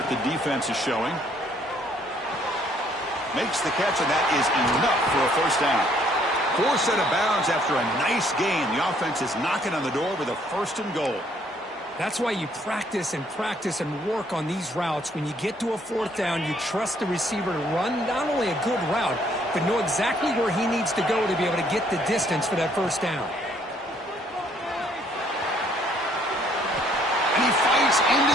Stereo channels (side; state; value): both; normal; correlation 0.65